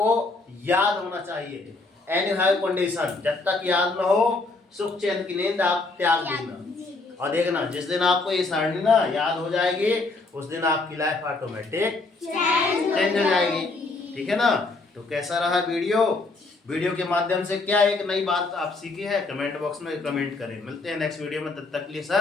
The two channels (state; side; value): quieter; right; 3.5 dB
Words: याद होना चाहिए। एनी हाई कंडीशन, जब तक याद न हो सुख चैन की नींद आप त्याग देना। और देखना जिस दिन आपको ये सारणी ना याद हो जाएगी, उस दिन आपकी लाइफ ऑटोमेटिक चेंज हो जाएगी। ठीक है ना। तो कैसा रहा वीडियो के माध्यम से क्या एक नई बात आप सीखी है, कमेंट बॉक्स में कमेंट करें। मिलते हैं नेक्स्ट वीडियो में, तब तक के लिए